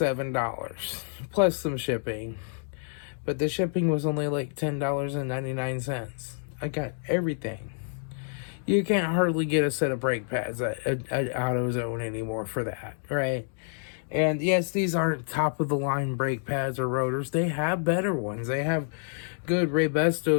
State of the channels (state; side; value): silent; right; 59 dB below the other